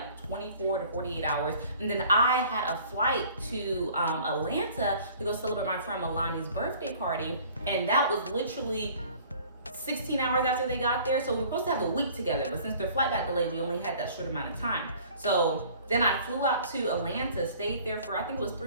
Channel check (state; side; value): inverted; both; correlation -0.52